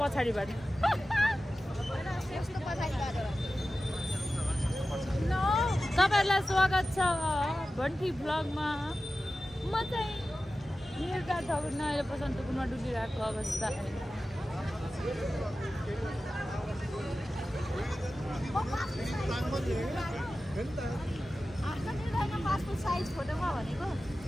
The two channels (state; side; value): normal; both; correlation 0.94